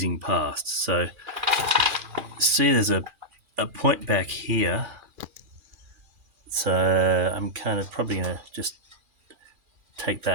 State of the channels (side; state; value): left; late; 2.4 ms